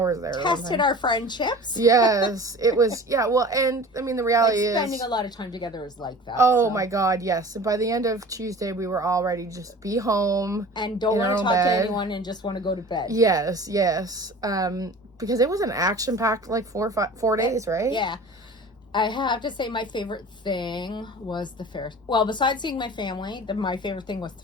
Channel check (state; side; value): normal; both; correlation 0.40